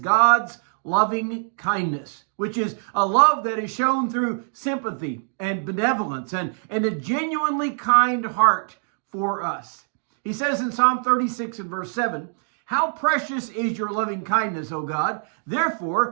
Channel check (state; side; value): silent; left; digital silence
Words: loving kindness, which is a love that is shown through sympathy and benevolence and a genuinely kind heart for us. He says in Psalm 36 and verse 7, "How precious is your loving kindness, O God!